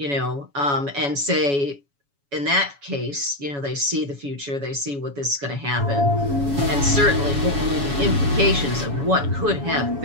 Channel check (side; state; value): left; late; 7.1 ms